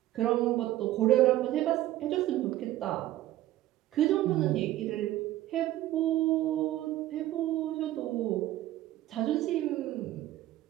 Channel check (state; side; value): quieter; left; 14.7 dB